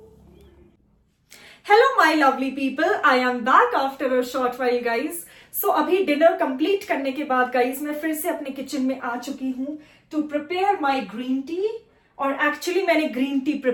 Hello my lovely people, I am back after a short while guys. So अभी डिनर कंप्लीट करने के बाद गाइज मैं फिर से अपने किचन में आ चुकी हूँ to prepare my green tea. और एक्चुअली मैंने ग्रीन टी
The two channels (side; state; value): both; identical; correlation 1.00